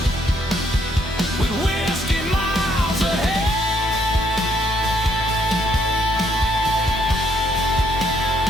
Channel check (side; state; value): both; normal; correlation 0.71